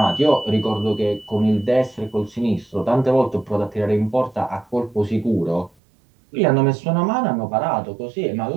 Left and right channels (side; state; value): left; drops out; at 5.7 s